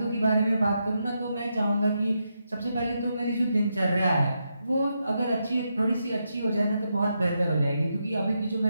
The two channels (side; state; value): both; inverted; correlation -0.83